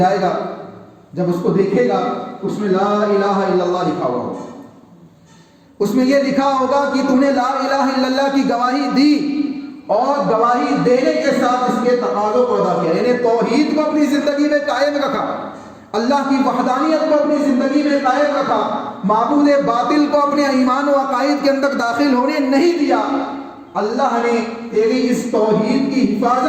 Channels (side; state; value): both; identical; correlation 1.00